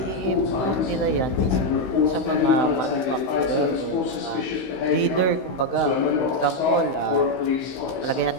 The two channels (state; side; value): late; right; 16 ms